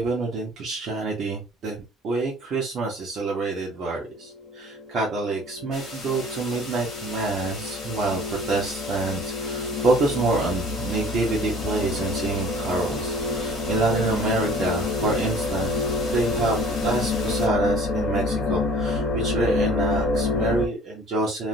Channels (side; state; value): both; normal; correlation 0.50